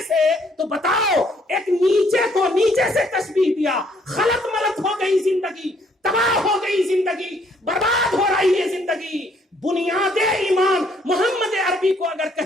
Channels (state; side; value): normal; both; correlation 0.66